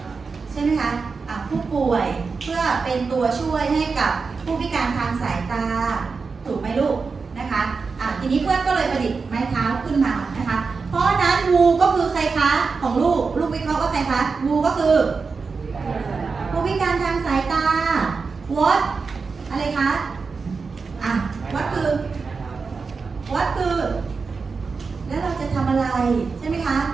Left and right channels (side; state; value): left; quieter; 4.8 dB